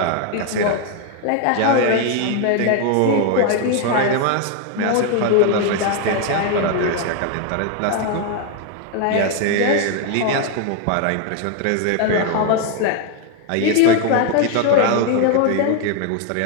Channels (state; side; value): different; both; correlation 0.01